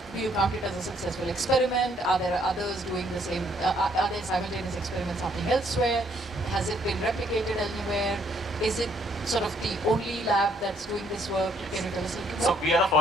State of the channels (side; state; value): both; normal; correlation 0.68